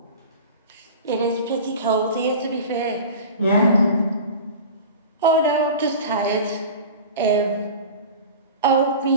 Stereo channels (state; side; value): inverted; both; correlation -0.35